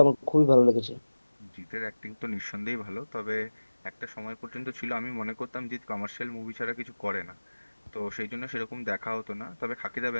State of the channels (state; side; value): inverted; both; correlation -1.00